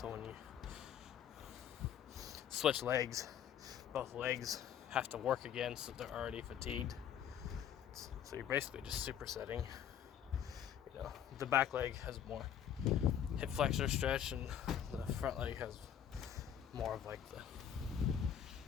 when you switch legs, both legs have to work again, so they're already fatigued. So you're basically just supersetting. You know, the back leg has more hip flexor stretch, and the front leg has more of like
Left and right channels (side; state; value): right; quieter; 9.3 dB